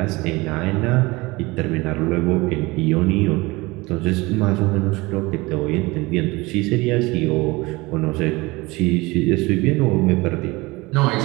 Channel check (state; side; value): quieter; left; 22.7 dB